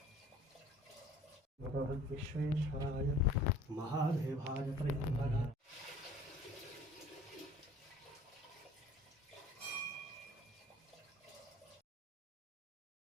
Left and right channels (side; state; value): both; normal; correlation 0.49